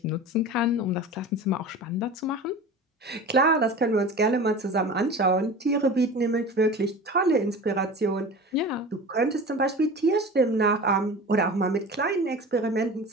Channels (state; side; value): normal; both; correlation 0.35